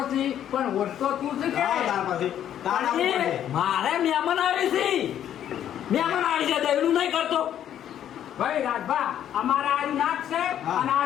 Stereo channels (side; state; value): right; quieter; 10.4 dB